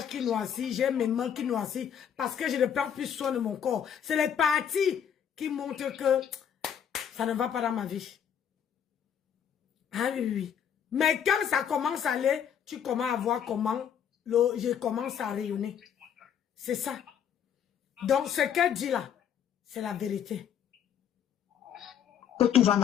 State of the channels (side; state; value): right; quieter; 8.6 dB